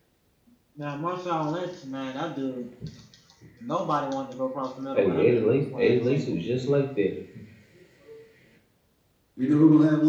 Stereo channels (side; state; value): both; identical; correlation 1.00